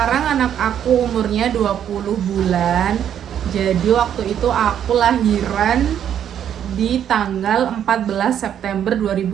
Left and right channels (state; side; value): quieter; left; 9.6 dB